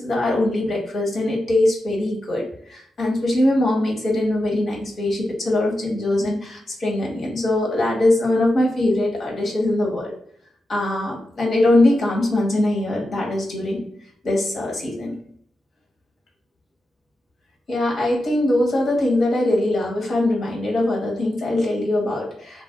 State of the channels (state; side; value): normal; both; correlation 0.89